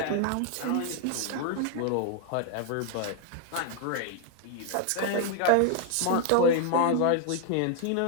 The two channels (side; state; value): both; different; correlation 0.00